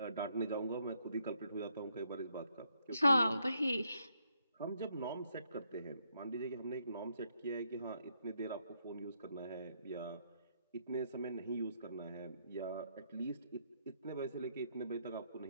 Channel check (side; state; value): both; inverted; correlation -0.74